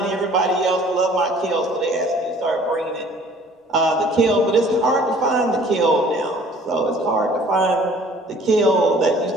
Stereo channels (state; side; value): normal; both; correlation 0.53